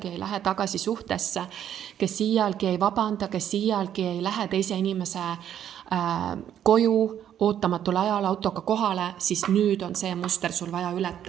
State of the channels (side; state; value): left; quieter; 10.2 dB